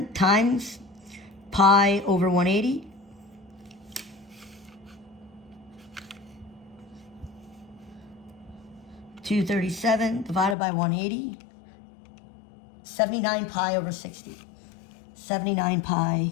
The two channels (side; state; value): right; drops out; at 10.6 s